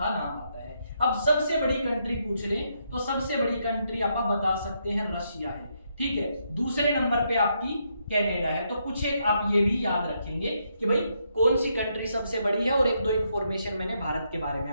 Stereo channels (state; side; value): inverted; both; correlation -0.78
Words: नाम आता है। अब सबसे बड़ी कंट्री पूछ लें तो सबसे बड़ी कंट्री आप बता सकते हैं रशिया है, ठीक है। दूसरे नंबर पे आपकी कनाडा है। तो कुछ एक आप ये भी याद रखेंगे कि भाई कौन सी कंट्री सबसे बड़ी है। और 1-2 इंफॉर्मेशन मैंने भारत के बारे में